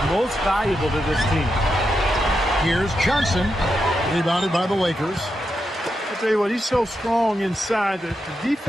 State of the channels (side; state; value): both; normal; correlation 0.86